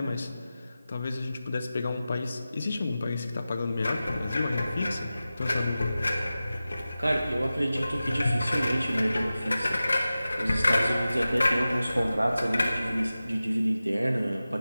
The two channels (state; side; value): inverted; both; correlation -0.95